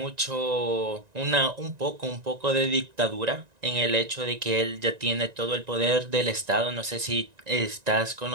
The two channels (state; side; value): late; left; 1.9 ms